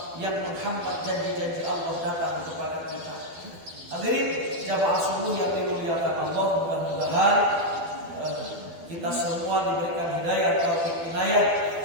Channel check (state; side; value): late; left; 12 ms